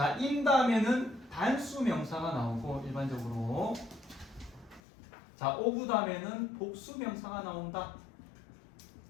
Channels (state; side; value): drops out; right; at 4.8 s